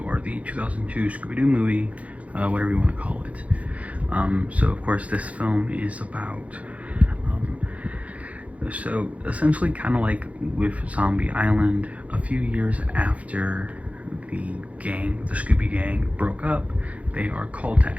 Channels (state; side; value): late; left; 0.066 ms